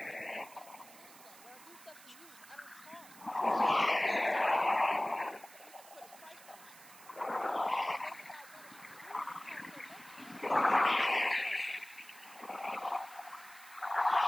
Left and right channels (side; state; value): right; noise; hiss, 20 dB below the sound